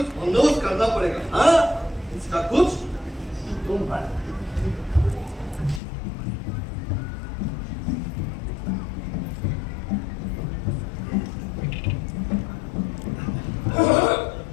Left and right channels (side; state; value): right; drops out; at 5.8 s